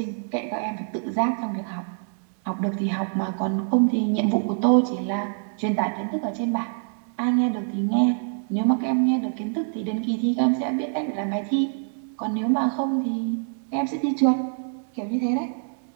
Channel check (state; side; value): silent; left; 62 dB below the other